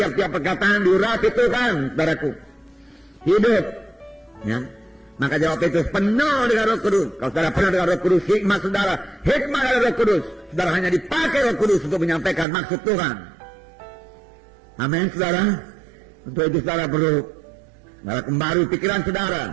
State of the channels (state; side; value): drops out; left; at 12.5 s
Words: perkataan diurapi Tuhan, saudaraku. Hidup, ya. Maka jawab Petrus, penuh dengan Roh Kudus. Kalau saudara penuh dengan Roh Kudus, hikmat saudara, hikmat dari Roh Kudus. Saudara hanya dipakai Roh Kudus untuk menyampaikan maksud Tuhan. Amin, saudara. Untuk itu saudara perlu kembali pikiran